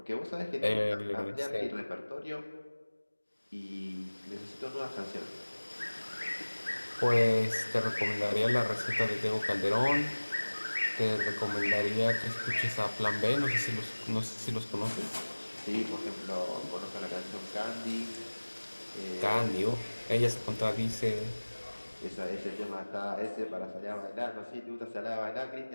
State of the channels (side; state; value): both; inverted; correlation -1.00